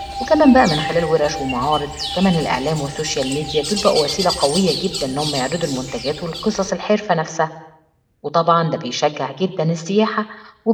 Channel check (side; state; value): both; identical; correlation 1.00